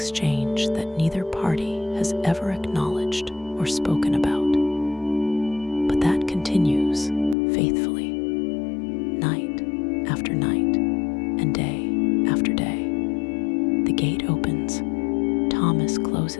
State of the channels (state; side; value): drops out; right; at 7.4 s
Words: that neither party has ever acknowledged or spoken about, but that continues faithfully, night after night and day after day. The gate opens, Thomas